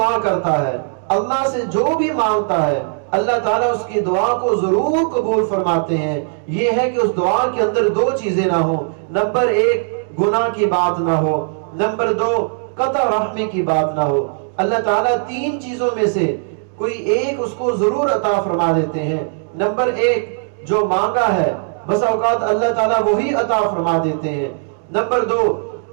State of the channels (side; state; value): left; silent; digital silence